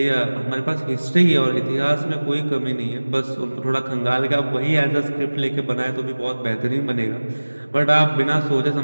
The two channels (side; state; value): both; inverted; correlation -1.00